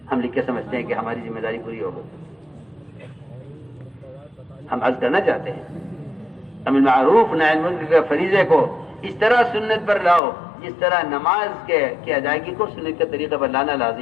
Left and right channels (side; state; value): right; drops out; at 10.2 s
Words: ہم لکھ کے سمجھتے ہیں کہ ہماری ذمہ داری پوری ہو گئی۔ ہم عرض کرنا چاہتے ہیں امر معروف نہی عن المنکر کے فریضے کو اس طرح سنت پر لاؤ جس طرح نماز کے ادائیگی کو سنت کے طریقے پر لانا